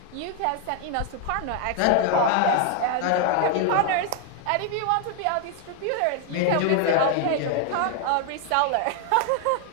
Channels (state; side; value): different; both; correlation 0.00